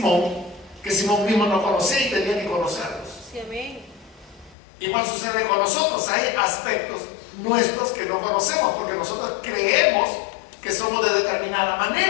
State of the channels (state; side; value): drops out; right; at 4.5 s